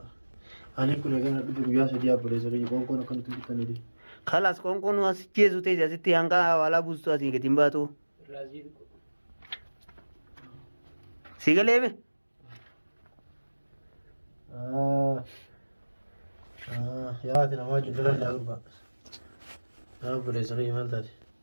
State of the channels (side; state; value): both; inverted; correlation -1.00